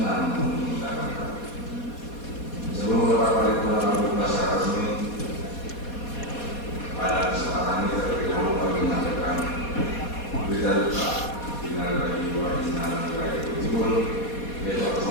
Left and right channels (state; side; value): late; right; 4.2 ms